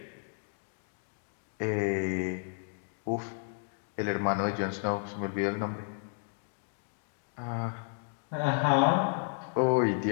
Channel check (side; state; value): right; silent; 56 dB below the other